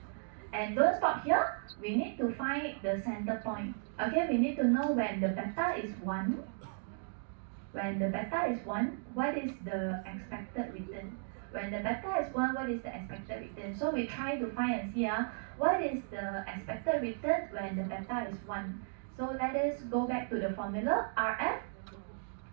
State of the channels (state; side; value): silent; left; digital silence